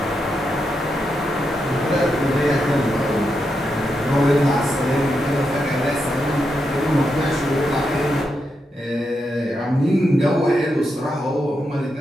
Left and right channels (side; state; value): both; normal; correlation 0.84